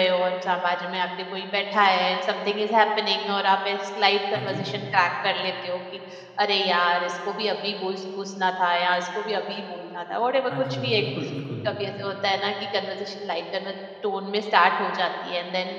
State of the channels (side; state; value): both; identical; correlation 1.00